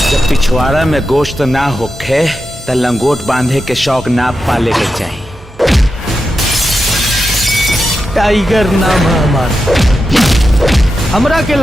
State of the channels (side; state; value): both; normal; correlation 0.89